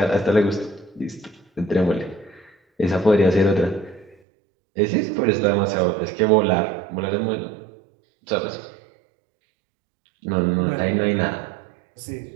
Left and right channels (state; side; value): drops out; left; at 4.2 s